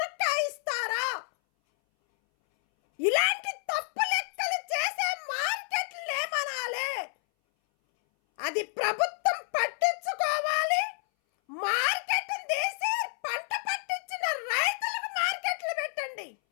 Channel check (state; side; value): silent; right; 58 dB below the other